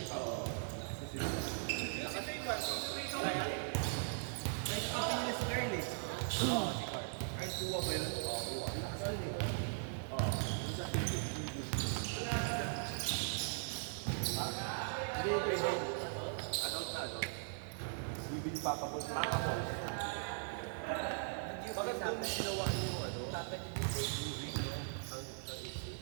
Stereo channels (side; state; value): left; silent; digital silence